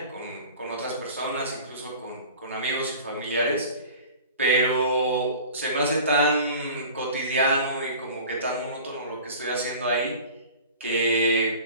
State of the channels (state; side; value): inverted; both; correlation -0.41